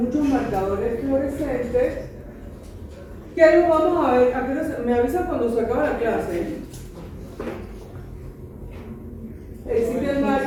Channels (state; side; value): identical; both; correlation 1.00